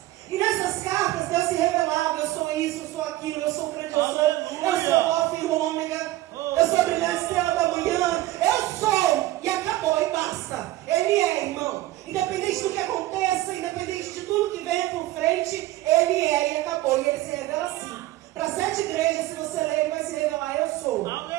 E nessas cartas Deus se revelava: eu sou isso, eu sou aquilo, eu sou o grande, eu sou o Alfa e o Ômega, eu sou a brilhante estrela da manhã, eu sou, e acabou, e basta. Ele é, irmão. Independente do que aconteça, independente de tudo que venha por frente, Ele é, e acabou. E Ele se revela assim. Para 7 igrejas, se você ler, Ele vai se revelar: eu sou.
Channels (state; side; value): quieter; left; 16.6 dB